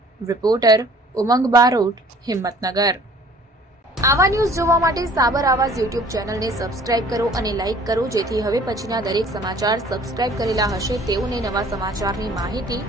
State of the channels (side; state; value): both; normal; correlation 0.53